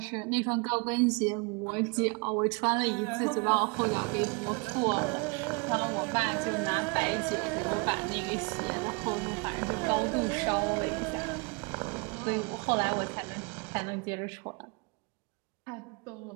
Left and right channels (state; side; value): quieter; left; 31.5 dB